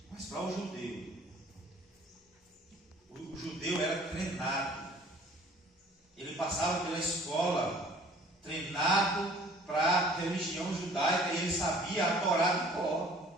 Mas para o judeu era treinado. Ele passava pela escola treinado para a religião judaica, e ele sabia a Torá de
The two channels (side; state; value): both; normal; correlation 0.52